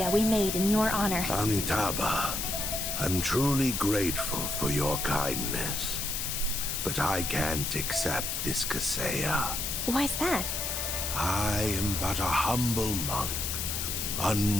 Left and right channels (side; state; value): left; noise; hiss, 2 dB below the sound